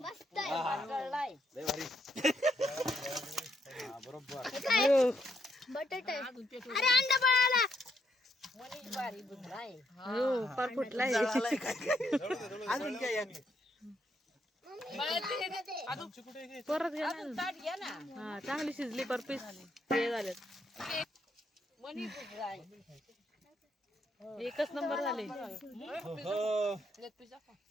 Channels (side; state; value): both; normal; correlation 0.76